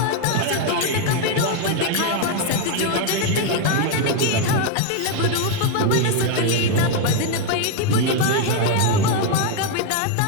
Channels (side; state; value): both; different; correlation 0.01